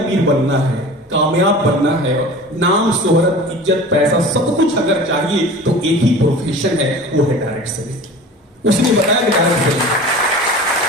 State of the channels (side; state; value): both; normal; correlation 0.38